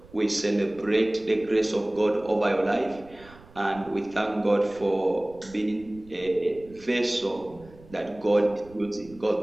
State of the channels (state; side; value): noise; right; rumble, 23 dB below the sound